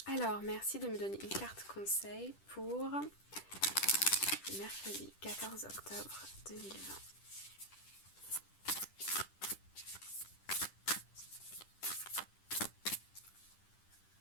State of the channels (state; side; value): late; right; 10 ms